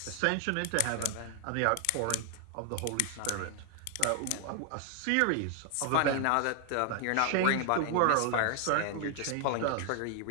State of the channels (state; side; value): different; both; correlation 0.00